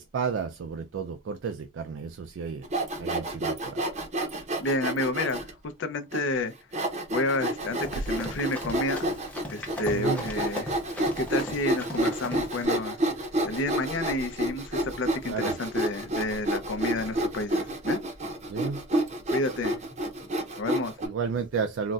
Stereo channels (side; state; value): both; normal; correlation 0.32